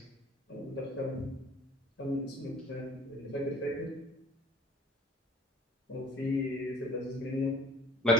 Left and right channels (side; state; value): both; normal; correlation 0.51